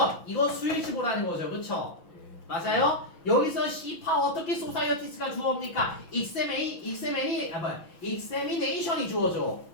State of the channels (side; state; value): right; late; 6.1 ms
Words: 이거 수일치 보라는 거죠? 그쵸? 맞아요? 여기서 C파 어떻게 소사이어티스가 주어입니까? examination이 주어져.